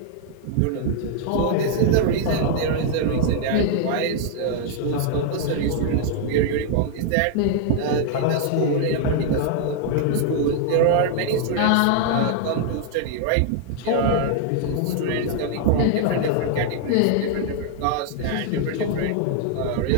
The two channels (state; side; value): different; both; correlation -0.01